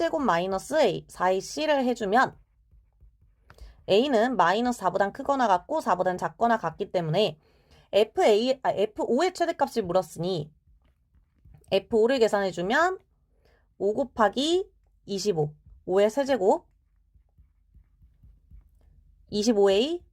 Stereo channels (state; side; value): identical; both; correlation 1.00